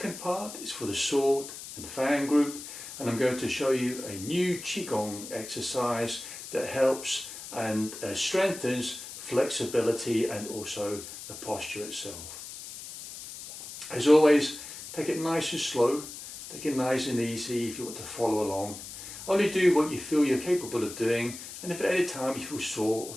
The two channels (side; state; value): left; noise; hiss, 11 dB below the sound